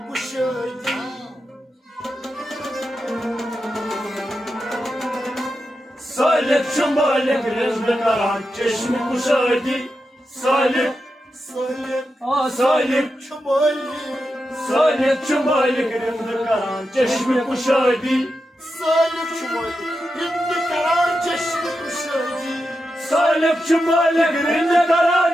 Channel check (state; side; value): normal; both; correlation 0.89